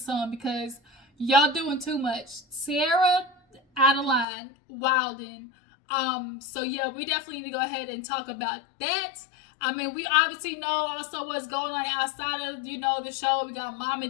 because y'all doing too much. Sierra out of line, wilding. So yeah, we definitely need to go ahead and talk about that. I mean, we obviously know also what's going on outside of, the show. We got Mama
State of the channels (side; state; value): right; drops out; at 4.2 s